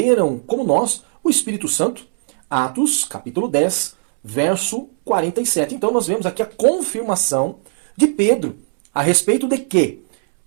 como nós, o Espírito Santo? Atos, capítulo 10, verso 47. Então nós vemos aqui a confirmação de Pedro a respeito de que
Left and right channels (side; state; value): left; silent; 67 dB below the other